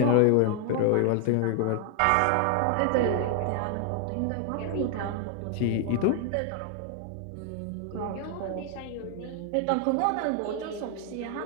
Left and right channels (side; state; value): both; different; correlation 0.00